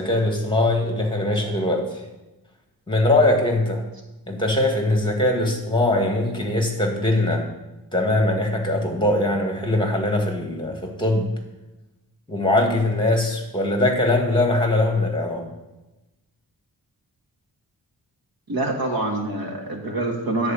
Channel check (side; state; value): both; normal; correlation 0.38